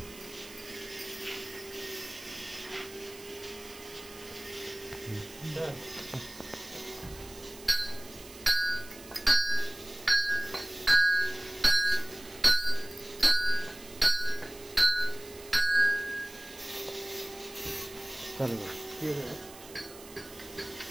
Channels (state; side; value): noise; right; hiss, 18 dB below the sound